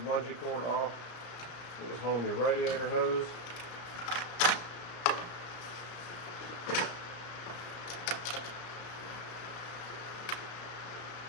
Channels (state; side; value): late; right; 34 ms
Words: bungee cord off. It was home your radiator hose.